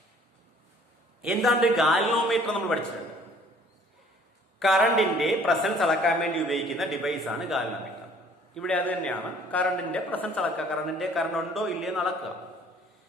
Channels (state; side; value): normal; both; correlation 0.56